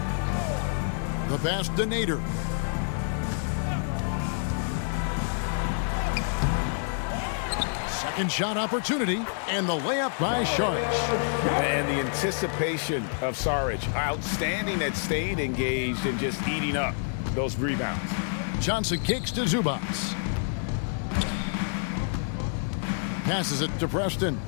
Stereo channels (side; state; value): right; silent; digital silence